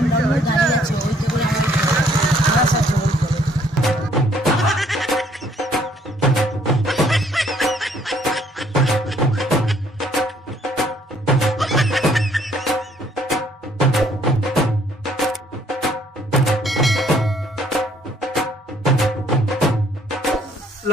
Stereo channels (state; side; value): normal; both; correlation 0.63